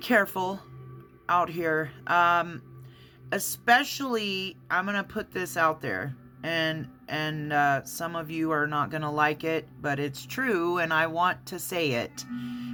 out here. Especially, I'm gonna put this out there, and some of you are not gonna like it, but it's true, and I want to say it.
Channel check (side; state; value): both; identical; correlation 1.00